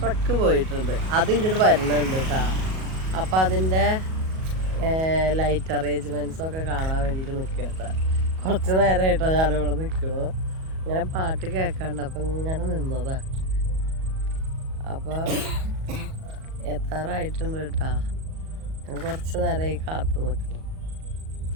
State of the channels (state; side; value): late; left; 37 ms